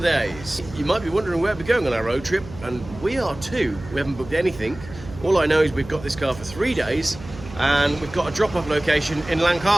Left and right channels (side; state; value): right; noise; hum, 16 dB below the sound